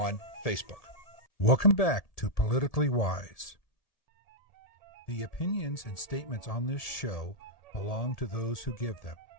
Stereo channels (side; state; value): right; late; 1.7 ms